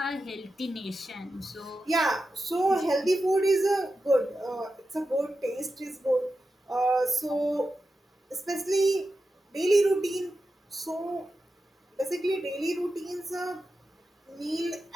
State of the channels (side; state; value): both; normal; correlation 0.91